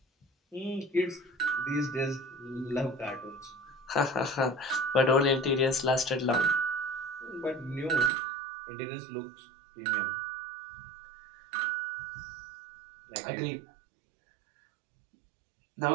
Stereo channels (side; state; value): left; drops out; at 8.1 s